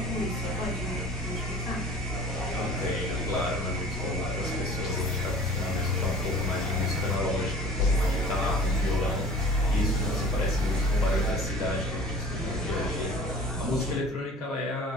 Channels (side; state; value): both; normal; correlation 0.44